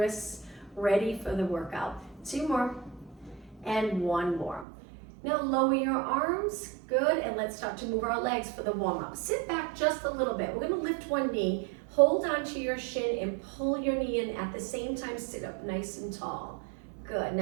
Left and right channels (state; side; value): drops out; left; at 4.7 s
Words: ready for the workout. 2 more and 1 more. Now lower your arms, good, and let's start to move our legs for the warm-up. Sit back just a little bit. We're going to lift one knee, hold onto your shin and pull your knee in. At the same time, sit up nice and tall. Good.